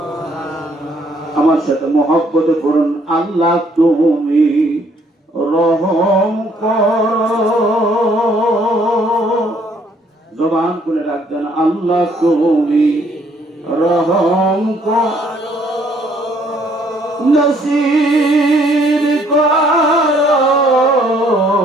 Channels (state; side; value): normal; both; correlation 0.65